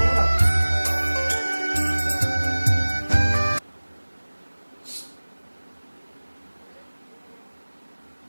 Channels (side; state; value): both; inverted; correlation -1.00